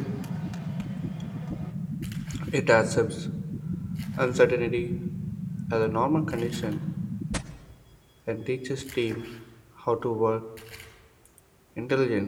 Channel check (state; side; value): identical; both; correlation 1.00